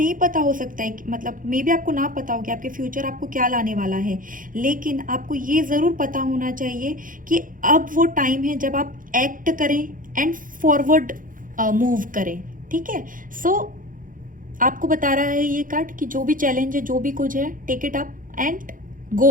पता हो सकता है कि मतलब मे बी आपको ना पता हो कि आपके फ्यूचर आपको क्या लाने वाला है, लेकिन आपको ये ज़रूर पता होना चाहिए कि अब वो टाइम है जब आप एक्ट करें एंड फॉरवर्ड मूव करें, ठीक है। सो आपको बता रहा है ये कार्ड कि जो भी चैलेंज है, जो भी कुछ है, take it up and go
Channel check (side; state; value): left; late; 0.39 ms